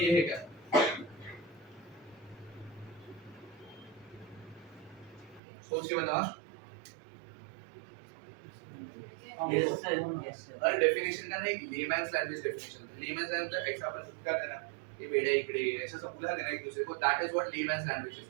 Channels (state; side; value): drops out; left; at 5.4 s